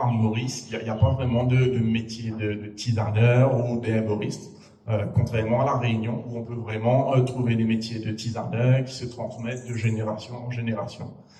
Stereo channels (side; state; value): both; identical; correlation 1.00